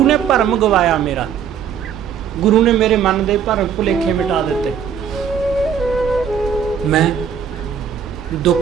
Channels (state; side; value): quieter; left; 7.9 dB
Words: ਨੇ ਭਰਮ ਗਵਾਇਆ ਮੇਰਾ। ਗੁਰੂ ਨੇ ਮੇਰੇ ਮਨ ਦੇ ਭਰਮ ਭੁਲੇਖੇ ਮਿਟਾ ਦਿੱਤੇ। ਮੈਂ